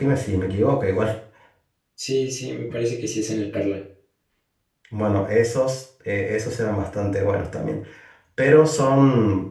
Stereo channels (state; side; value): identical; both; correlation 1.00